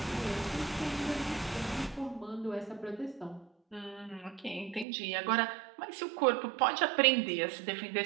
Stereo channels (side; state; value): left; drops out; at 4.9 s